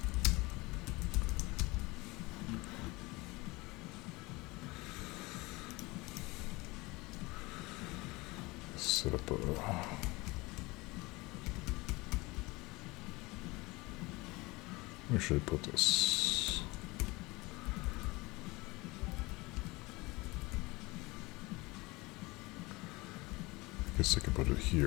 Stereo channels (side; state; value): right; quieter; 23.1 dB